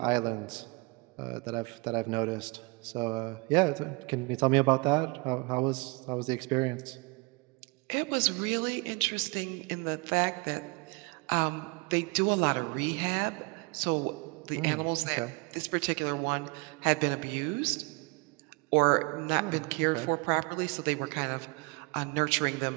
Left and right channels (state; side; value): quieter; left; 28.6 dB